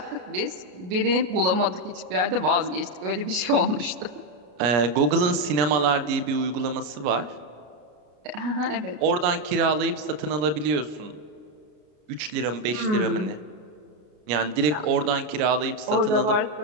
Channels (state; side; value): late; left; 33 ms